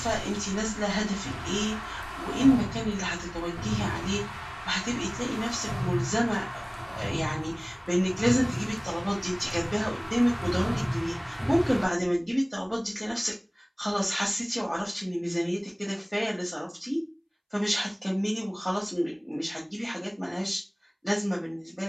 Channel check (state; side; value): identical; both; correlation 1.00